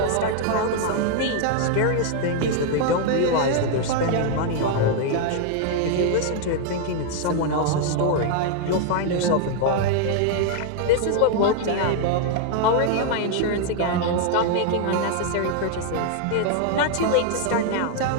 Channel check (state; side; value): different; both; correlation 0.00